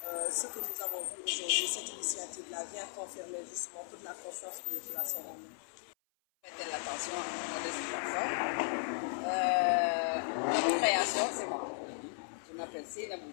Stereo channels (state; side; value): silent; right; 54 dB below the other